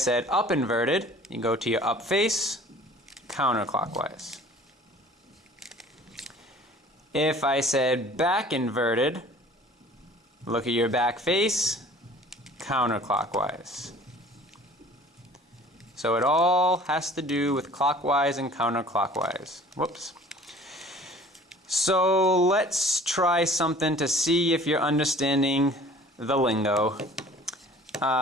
up inverted, you go to your up face, counterclockwise. If I said back inverted, look at your back face, counterclockwise. So it all has to do with clockwise and counterclockwise. Whoops. So let's try something to see if you're understanding the lingo.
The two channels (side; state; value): both; normal; correlation 0.49